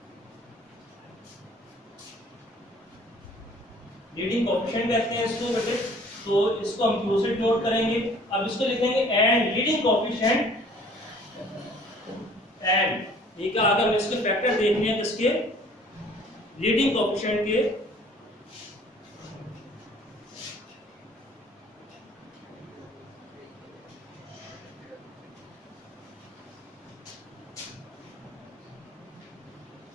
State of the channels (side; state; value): both; normal; correlation 0.53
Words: लीडिंग कोएफिशिएंट कहते हैं इसको बेटे, तो इसको हम q से डिनोट करेंगे। अब इसको लिखेंगे एंड लीडिंग कोएफिशिएंट एंड, ठीक है, अगर हम इसके फैक्टर देखने हैं किसके, लीडिंग कोएफिशिएंट के,